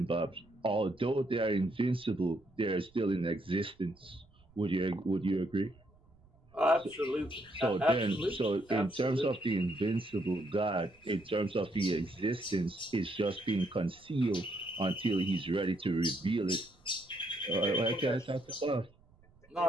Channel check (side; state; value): right; noise; rumble, 29 dB below the sound